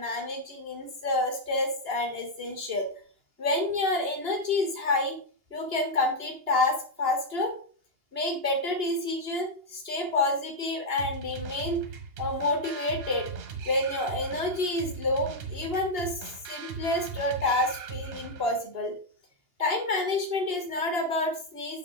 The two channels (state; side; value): late; left; 2.8 ms